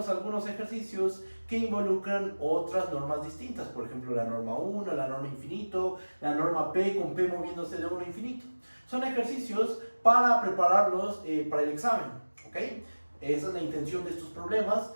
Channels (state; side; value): inverted; both; correlation -1.00